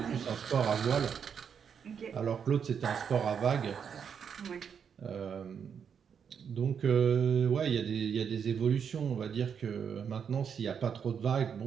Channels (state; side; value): quieter; left; 7.3 dB